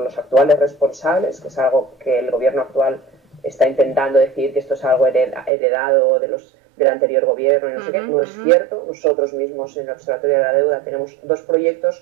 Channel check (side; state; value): left; drops out; at 5.5 s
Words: los actuales responsables, que es algo que el gobierno actual está intentando decir que esto es algo heredado del anterior gobierno y no sé qué. No es cierto. Nosotros mismos en el Observatorio de la Deuda tenemos dos